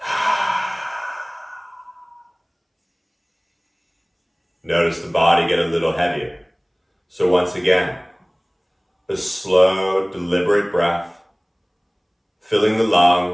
Notice the body get a little heavier. So once again, a slow, deliberate breath, filling the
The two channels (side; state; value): both; identical; correlation 1.00